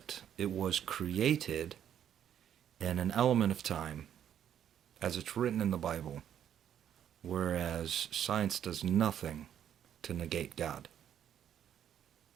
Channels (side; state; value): left; quieter; 9.8 dB